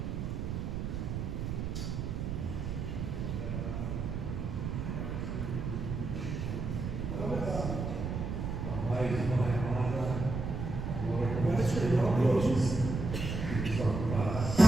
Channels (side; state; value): right; noise; rumble, 3 dB below the sound